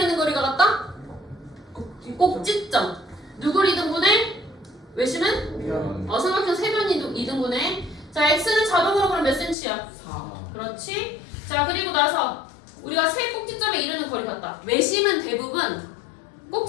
거리가 같다? 꼭지점. 누구를 이등분해? 외심은? 변. 삼각형 세변 이등분해. 자, x는 자동으로 그럼 몇 cm야? 4. 그렇지. 자, 그리고 나서 우리가 세 꼭지점에 이르는 거리 같다. 외심은 대부분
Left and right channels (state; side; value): drops out; right; at 9.6 s